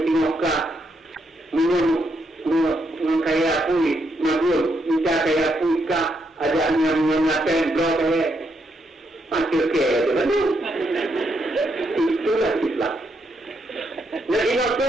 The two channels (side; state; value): both; normal; correlation 0.78